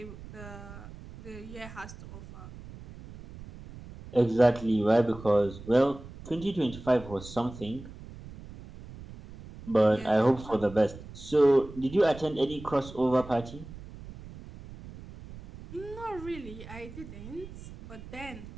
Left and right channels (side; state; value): right; noise; rumble, 15 dB below the sound